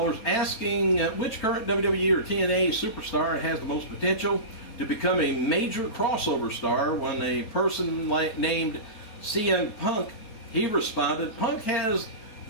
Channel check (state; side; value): late; right; 4.4 ms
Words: asking which current WWE or TNA superstar has the most potential to become a major crossover star. When a person named CM Punk, he responded, Punk has